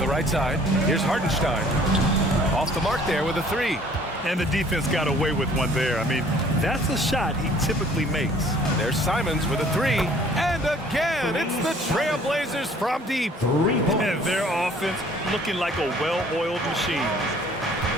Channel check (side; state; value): both; normal; correlation 0.55